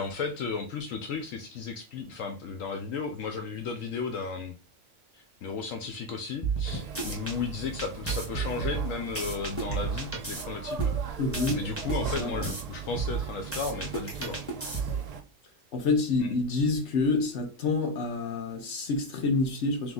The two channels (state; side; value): normal; both; correlation 0.11